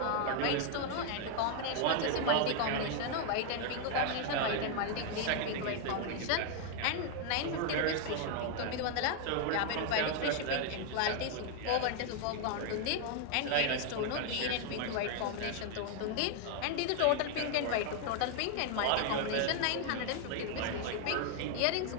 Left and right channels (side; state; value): both; different; correlation 0.00